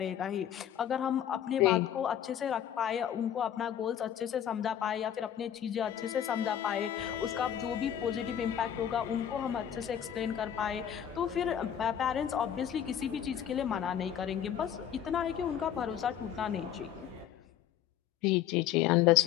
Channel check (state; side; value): quieter; right; 9.9 dB